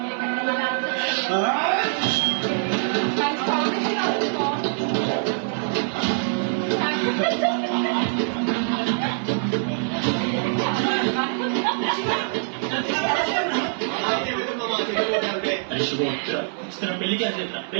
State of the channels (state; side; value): silent; left; 63 dB below the other